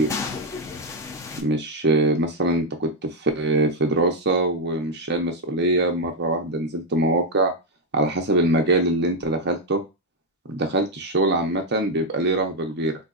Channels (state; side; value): normal; both; correlation 0.02